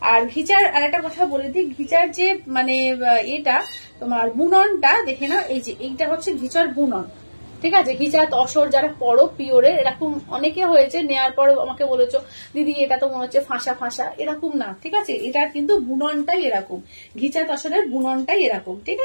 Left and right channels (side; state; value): both; inverted; correlation -1.00